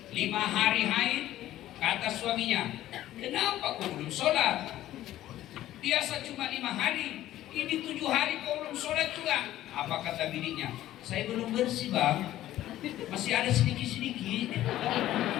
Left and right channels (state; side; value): quieter; right; 13.9 dB